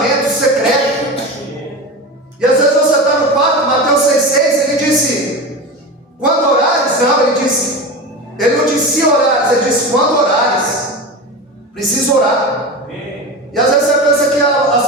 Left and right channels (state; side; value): normal; both; correlation 0.26